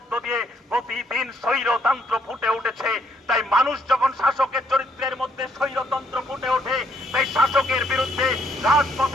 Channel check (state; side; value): normal; both; correlation 0.70